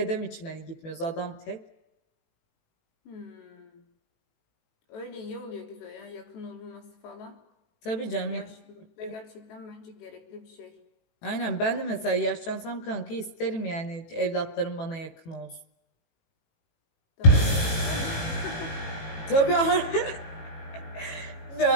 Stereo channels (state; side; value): late; right; 18 ms